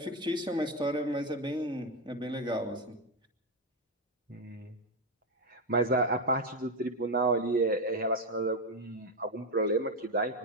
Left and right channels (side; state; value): both; normal; correlation 0.08